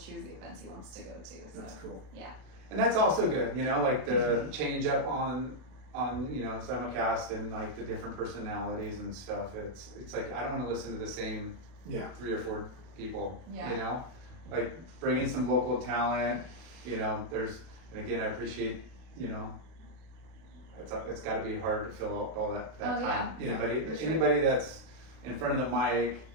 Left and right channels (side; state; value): left; late; 32 ms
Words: choose the events he wants to go to. So. That's cool. Yeah. And that's also good, like the change up on simulcast and like the different personalities and stuff. It's like I don't want to listen to the same 3 or 4 people. Yeah. Like bring in some local talent. And again, I appreciate it's got to be hard to fill out all that time. Yeah. Anybody that's in front of the mic,